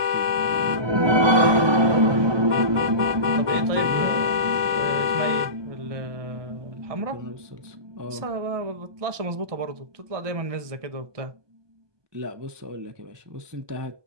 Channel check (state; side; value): late; left; 1.2 ms